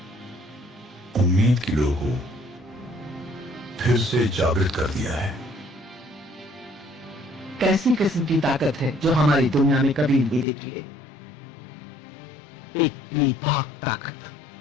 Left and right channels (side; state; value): right; drops out; at 10.5 s